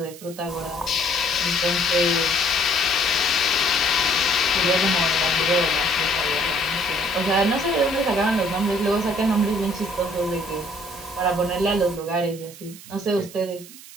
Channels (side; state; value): right; noise; hiss, 17 dB below the sound